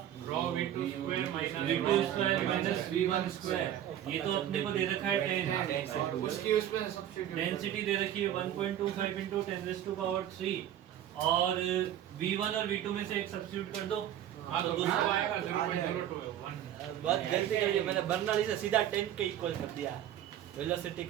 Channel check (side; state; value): left; quieter; 11.2 dB